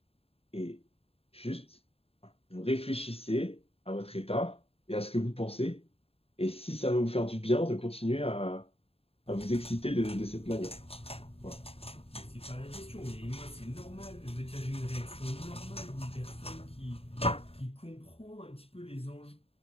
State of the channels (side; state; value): right; late; 0.28 ms